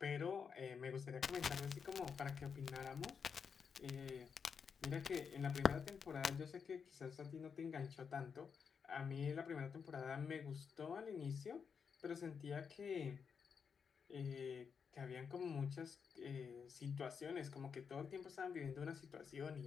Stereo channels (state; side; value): quieter; right; 6.3 dB